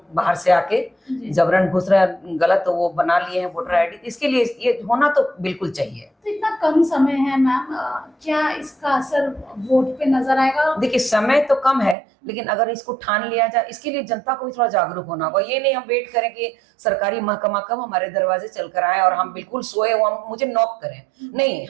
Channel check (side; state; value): left; drops out; at 12.0 s